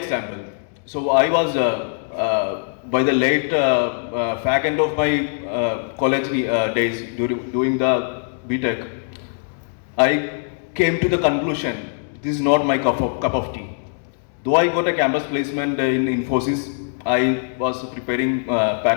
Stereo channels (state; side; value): silent; right; digital silence